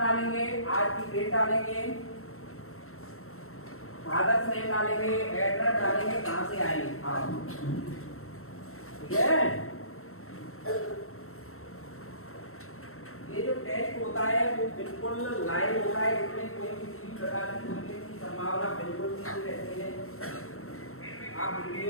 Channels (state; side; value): late; right; 0.63 ms